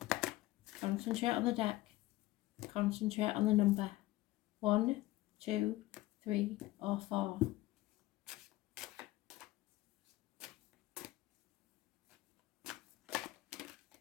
Concentrate on the deck. Concentrate on the number. 1, 2, 3 or 4.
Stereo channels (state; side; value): quieter; right; 17.5 dB